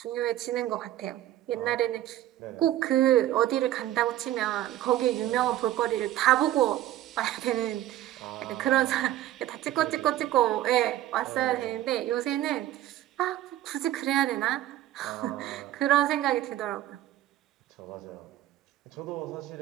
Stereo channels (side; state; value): left; quieter; 13.7 dB